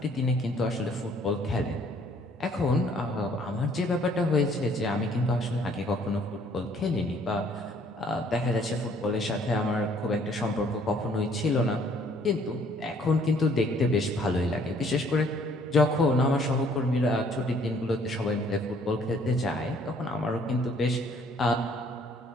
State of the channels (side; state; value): both; normal; correlation 0.61